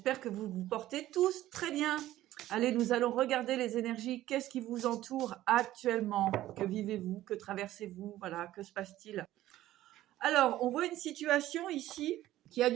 que vous vous portez tous très bien. Allez, nous allons regarder les énergies. Qu'est-ce qui vous entoure actuellement? Que vivez-vous? Que traversez-vous? Voilà, que se passe-t-il? Alors, on voit une situation ici qui a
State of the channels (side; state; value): left; quieter; 14.5 dB